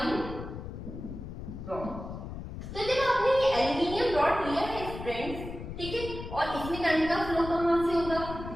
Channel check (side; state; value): left; noise; rumble, 9 dB below the sound